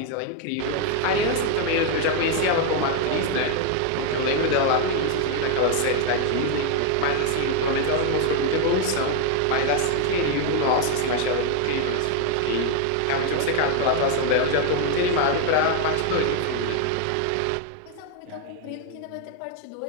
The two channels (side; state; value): both; different; correlation 0.01